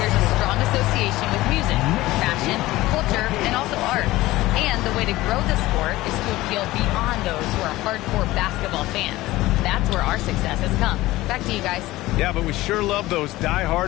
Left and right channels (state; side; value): quieter; right; 17.7 dB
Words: a strong association with music, fashion, culture, and also art. And the way to grow the sport is to appeal beyond those who are hardcore basketball fans. That's where our success has come. Back to you guys. Yeah, but we sure love those